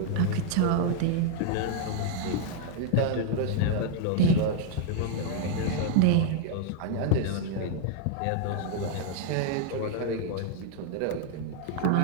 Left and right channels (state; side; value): different; both; correlation 0.00